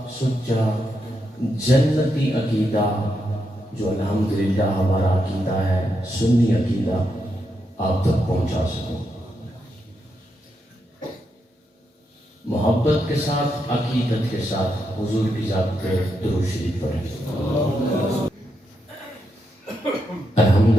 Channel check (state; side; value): normal; both; correlation 0.83